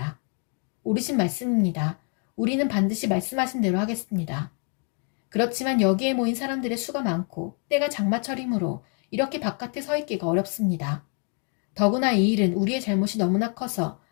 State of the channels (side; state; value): right; quieter; 38.8 dB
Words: 옳으신 말씀입니다. 우리는 반드시 말씀하신 대로 하겠습니다. 그렇지만 여기에 모인 사람들의 수가 많고 때가 장마철이므로 이렇게 바깥에 서 있기가 어렵습니다. 더구나 이 일은 우리의 잘못이 너무나 커서